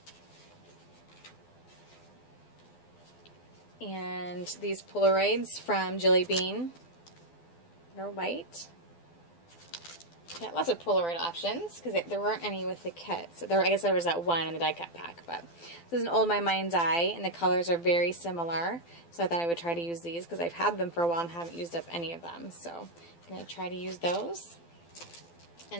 And these Polaroids from Jelly Bean. They're white. Got lots of Polaroid options because there weren't any with the kit. So I guess there was that one in the die cut pack. But this is an old My Mind's Eye, and the colors are very similar. So I thought I would try to use these because I've had them for a while and haven't used up any of them. So I'm going to try to use those.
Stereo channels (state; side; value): late; right; 12 ms